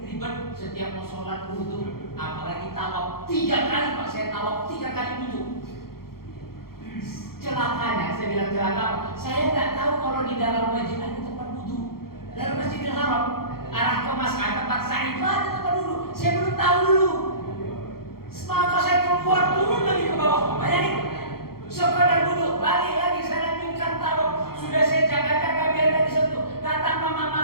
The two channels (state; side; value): late; right; 0.94 ms